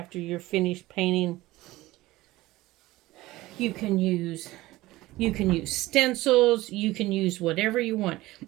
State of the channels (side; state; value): left; quieter; 18.2 dB